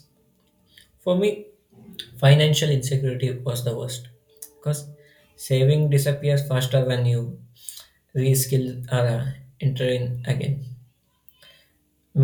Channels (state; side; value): identical; both; correlation 1.00